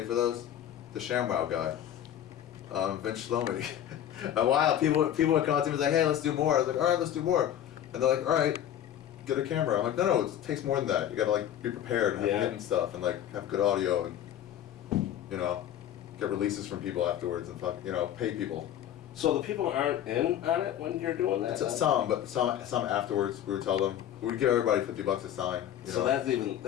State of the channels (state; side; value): quieter; right; 10.8 dB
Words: for those? The ShamWow guy. Vince Shlomi. A while, people would come up to me and be like, hey, let's do more. I was like, all right, let's do more. And they're like, all right, get a camera. I'm like, no, it takes more than that. You gotta like be prepared and have Yeah. hidden stuff and like have good audio and, get releases from people afterwards and pay people. So the people aren't in on it when you're doing that? Some, but some afterwards. We would tell them we'd give everybody $50 a sign. So that